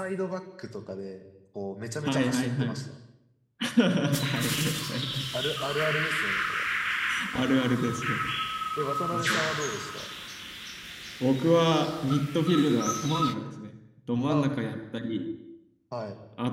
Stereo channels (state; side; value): identical; both; correlation 1.00